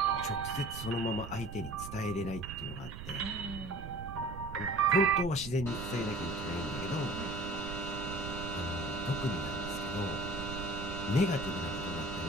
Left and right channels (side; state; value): right; noise; rumble, 9 dB below the sound